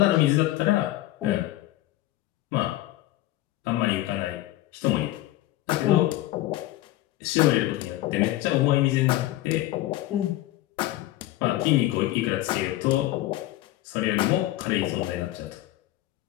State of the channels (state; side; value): quieter; right; 15.9 dB